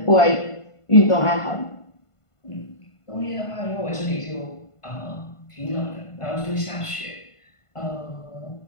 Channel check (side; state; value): right; late; 1.5 ms